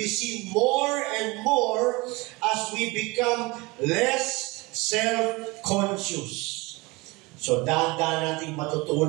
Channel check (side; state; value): left; quieter; 24.2 dB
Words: seen more and more as we become less self-conscious. So, dahan-dahan natin